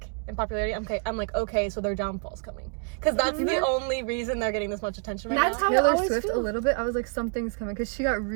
in popularity, I'm like, okay, so their downfall's coming. Because that's the only reason they're getting this much attention right That's now. how I Taylor always Swift feel. a little bit. I was like, something's coming because she got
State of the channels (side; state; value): left; quieter; 38.6 dB